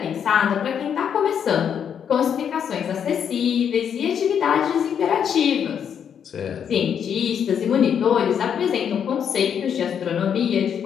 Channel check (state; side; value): quieter; right; 8.1 dB